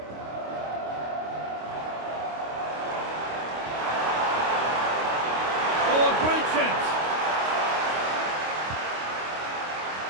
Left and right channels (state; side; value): late; left; 26 ms